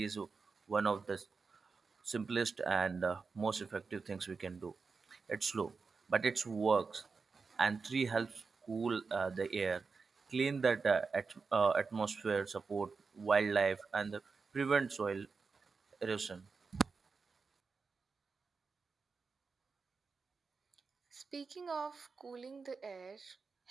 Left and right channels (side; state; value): left; quieter; 4.8 dB